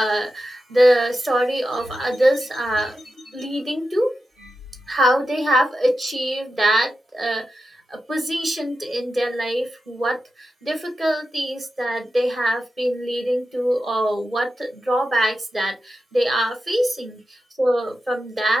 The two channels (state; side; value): normal; both; correlation 0.91